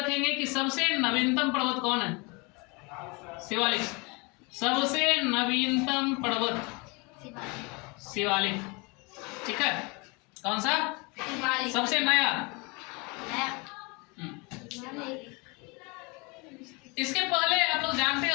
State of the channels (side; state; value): right; quieter; 28.8 dB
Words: कि सबसे नवीनतम पर्वत कौन है? शिवालिक, सबसे नवीनतम पर्वत शिवालिक, ठीक है। कौन सा? सबसे नया। इसके पहले आप लोग जानते